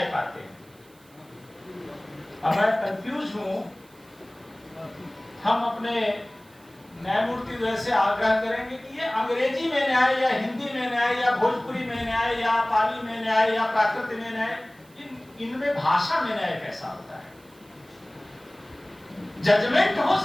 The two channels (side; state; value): right; noise; hiss, 29 dB below the sound